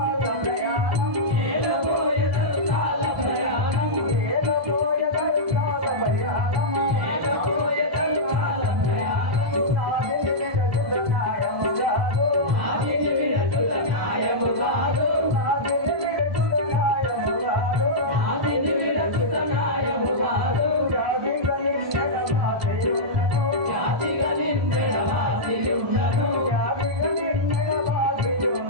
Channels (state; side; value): late; left; 1.5 ms